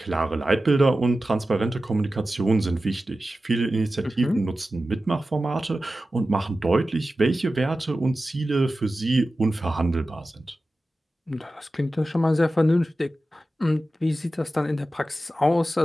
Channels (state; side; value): normal; both; correlation 0.94